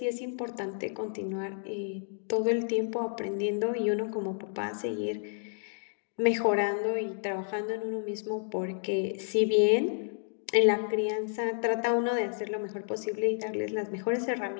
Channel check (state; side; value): silent; right; digital silence